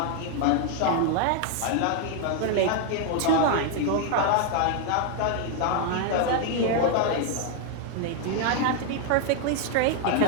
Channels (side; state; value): both; different; correlation 0.00